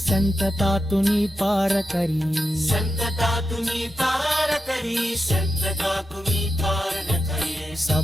तुनी पार करी संतता तुम्ही पार करी संतता तुम्ही पार न करी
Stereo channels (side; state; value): both; normal; correlation 0.89